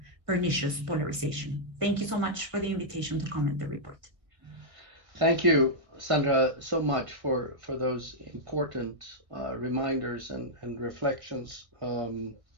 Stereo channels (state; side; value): late; left; 1.6 ms